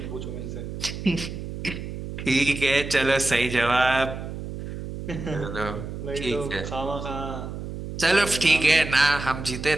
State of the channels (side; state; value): right; noise; hum, 8 dB below the sound